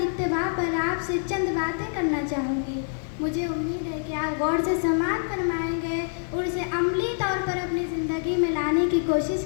اتباع پر آپ سے چند باتیں کرنا چاہوں گی۔ مجھے امید ہے کہ آپ غور سے سماعت فرمائیں گے اور اسے عملی طور پر اپنی زندگی میں لانے کی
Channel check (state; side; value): silent; right; digital silence